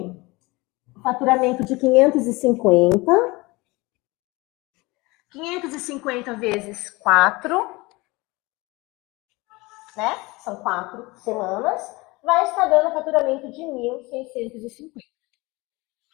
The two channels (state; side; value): quieter; right; 23.4 dB